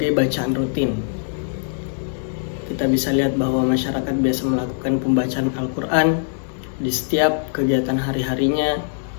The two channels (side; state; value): right; silent; digital silence